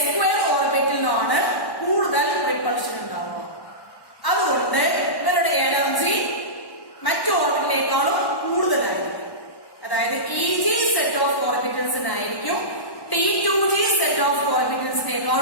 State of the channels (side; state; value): right; late; 1.1 ms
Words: ഓർബിറ്റലിനുമാണ് കൂടുതൽ റിപ്പൾഷൻ ഉണ്ടാവുക. അതുകൊണ്ട് ഇവരുടെ എനർജി മറ്റു ഓർബിറ്റിനേക്കാളും കൂടുതലായിരിക്കും. അതായത് EG സെറ്റ് ഓഫ് ഓർബിറ്റൽസിനായിരിക്കും T2g സെറ്റ് ഓഫ്